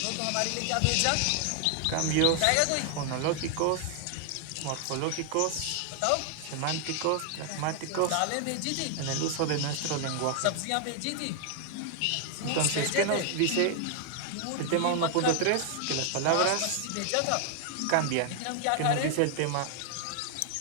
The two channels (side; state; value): both; different; correlation 0.00